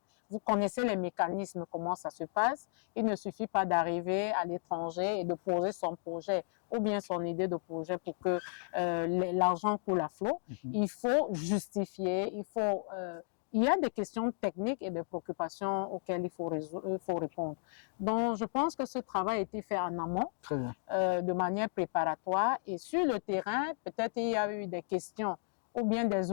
vous connaissez les mécanismes, comment ça se passe. Il ne suffit pas d'arriver à l'étranger et de poser son projet ou bien son idée de projet pour que l'argent coule à flot. Il faut justifier, il y a des questions techniques et des préoccupations auxquelles il faut répondre. Donc, je pense que ce travail a été fait en amont, de manière préparatoire. Et sur le terrain, peut-être il y a eu des questions ou bien des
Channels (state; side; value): silent; right; digital silence